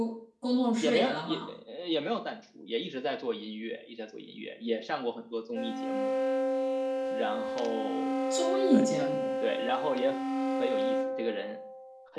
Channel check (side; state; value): both; identical; correlation 1.00